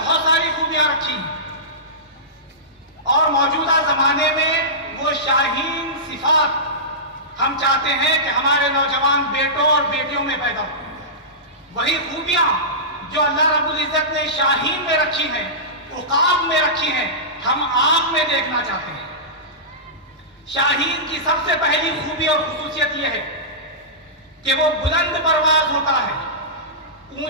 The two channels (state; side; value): normal; both; correlation -0.18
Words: ساری خوبیاں رکھی ہیں، اور موجودہ زمانے میں وہ شاہین صفات ہم چاہتے ہیں کہ ہمارے نوجوان بیٹوں اور بیٹیوں میں پیدا ہو۔ وہی خوبیاں جو اللہ رب العزت نے شاہین میں رکھی ہیں، عقاب میں رکھی ہیں، ہم آپ میں دیکھنا چاہتے ہیں۔ شاہین کی سب سے پہلی خوبی اور خصوصیت یہ ہے کہ وہ بلند پرواز ہوتا ہے،